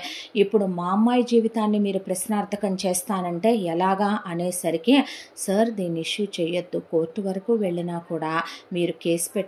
ఇప్పుడు మా అమ్మాయి జీవితాన్ని మీరు ప్రశ్నార్థకం చేస్తానంటే ఎలాగా అనేసరికి, సార్ దీన్ని ఇష్యూ చేయొద్దు, కోర్టు వరకు వెళ్ళినా కూడా మీరు కేసు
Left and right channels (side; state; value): both; identical; correlation 1.00